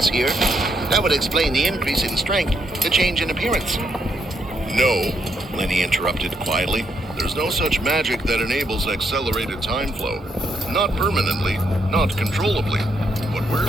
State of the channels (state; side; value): normal; both; correlation 0.76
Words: here? That would explain the increase in strength, the change in appearance. No, Lenny interrupted quietly. There's no such magic that enables accelerated time flow. Not permanently, not controllably. What we're